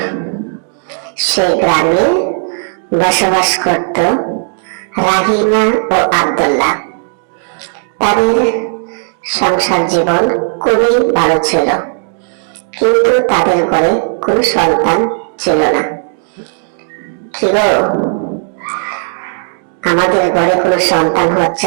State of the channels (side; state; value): left; silent; digital silence